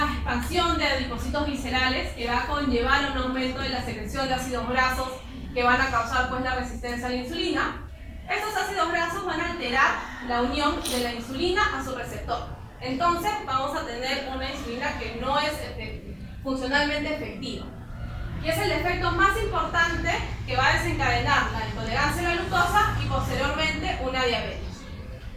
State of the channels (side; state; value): both; identical; correlation 1.00